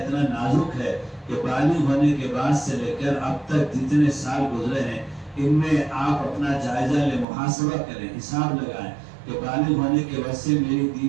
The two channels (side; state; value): left; drops out; at 7.2 s